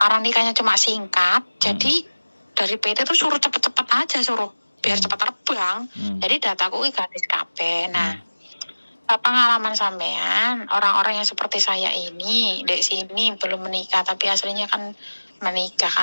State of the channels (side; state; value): both; inverted; correlation -1.00